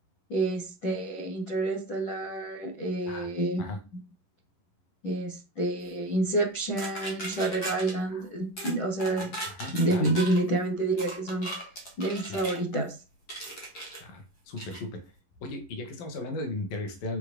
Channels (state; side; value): late; right; 11 ms